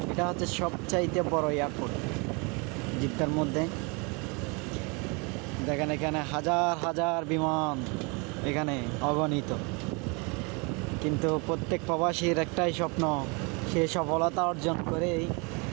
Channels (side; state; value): left; quieter; 30.8 dB